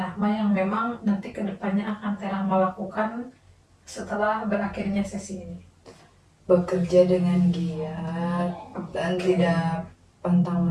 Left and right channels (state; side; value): identical; both; correlation 1.00